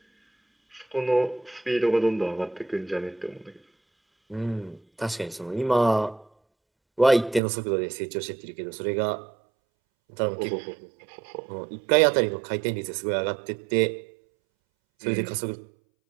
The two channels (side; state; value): left; drops out; at 7.4 s